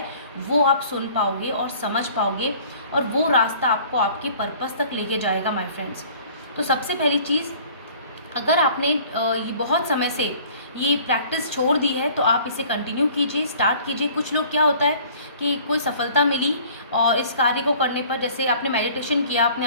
वो आप सुन पाओगे और समझ पाओगे, और वो रास्ता आपको आपके पर्पस तक लेके जाएगा माय फ्रेंड्स। तो सबसे पहली चीज़, अगर आपने ये बहुत समय से ये प्रैक्टिस छोड़ दी है तो आप इसे कंटिन्यू कीजिए, स्टार्ट कीजिए। कुछ लोग क्या होता है कि कोई सफलता मिली और इस कार्य को करने पर, जैसे आपने मेडिटेशन किया, आपने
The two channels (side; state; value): both; inverted; correlation -0.51